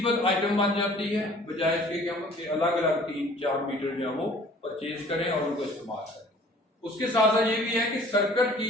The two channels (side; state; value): both; normal; correlation 0.51